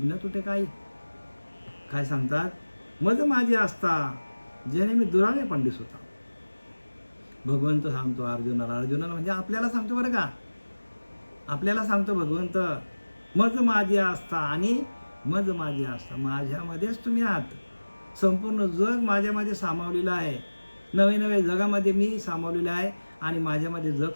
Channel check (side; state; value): both; inverted; correlation -1.00